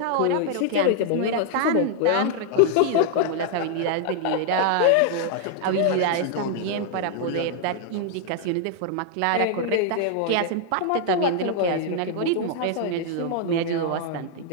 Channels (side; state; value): both; different; correlation -0.01